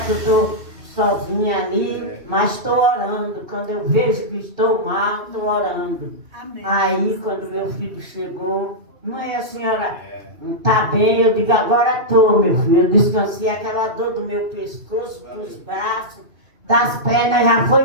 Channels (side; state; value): left; late; 2.7 ms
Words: eu estou sozinha ali, mas estou orando. Quando eu vejo que estou mal, estou orando. Amém. Aí, quando meu filho chegou, mãe, a senhora está bem? Eu digo, agora estou, meu filho. Eu descansei, aquela dor do meu pescoço, dos braços, das pernas, já